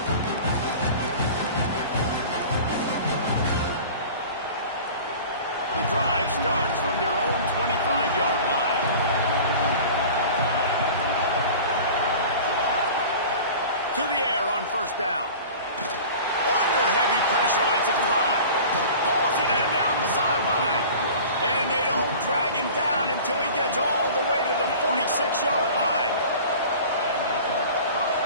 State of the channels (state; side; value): inverted; both; correlation -0.40